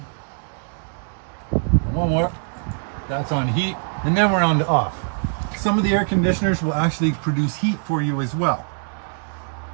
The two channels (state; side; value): silent; left; 64 dB below the other